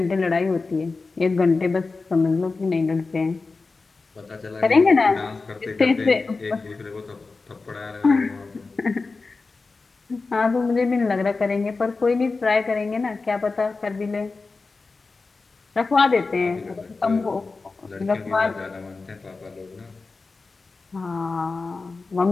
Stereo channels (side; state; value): right; quieter; 4.0 dB